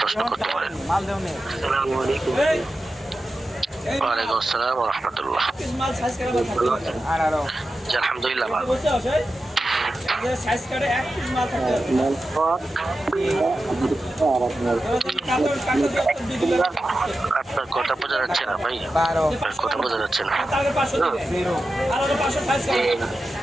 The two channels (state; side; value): normal; both; correlation 0.92